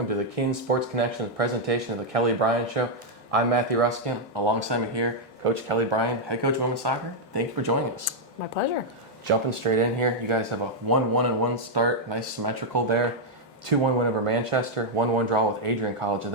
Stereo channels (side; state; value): both; normal; correlation -0.03